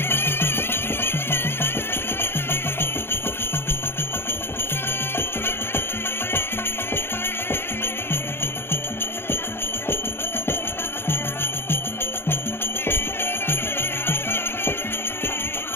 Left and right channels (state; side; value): late; right; 0.11 ms